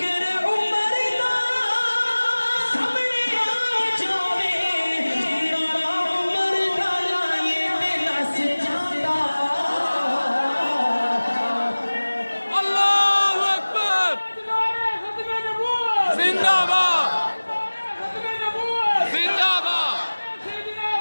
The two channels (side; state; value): both; inverted; correlation -1.00